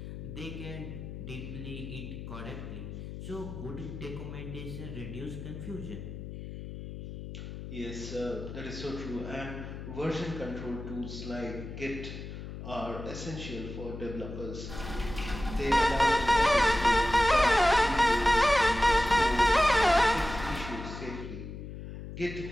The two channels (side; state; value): left; noise; hum, 10 dB below the sound